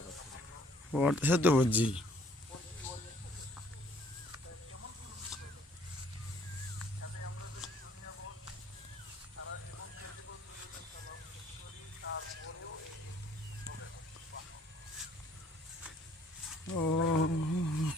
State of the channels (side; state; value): both; normal; correlation 0.60